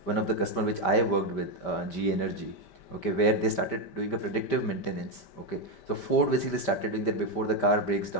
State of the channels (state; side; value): late; right; 5.1 ms